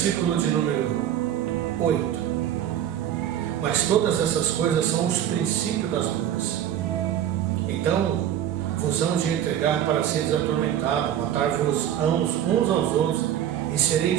de número 8. Mas todas essas coisas são os princípios das dores. Então, vos hão de entregar para seres atormentados, matar-vos uns aos outros, e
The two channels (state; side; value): quieter; left; 10.7 dB